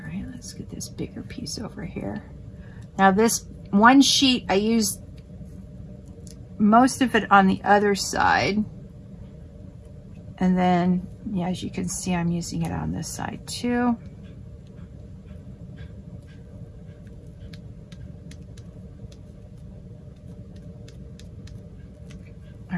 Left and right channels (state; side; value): identical; both; correlation 1.00